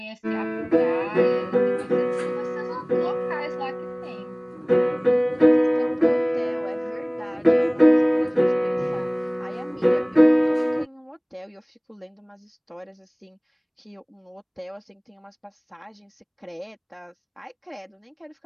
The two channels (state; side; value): identical; both; correlation 1.00